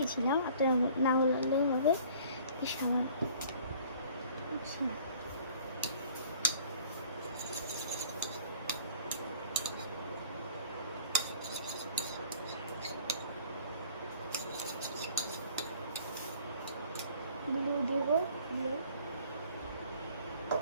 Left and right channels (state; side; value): inverted; both; correlation -0.53